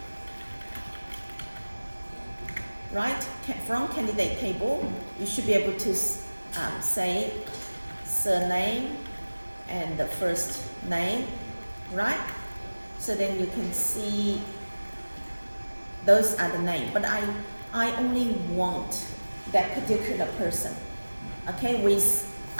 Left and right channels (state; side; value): inverted; both; correlation -1.00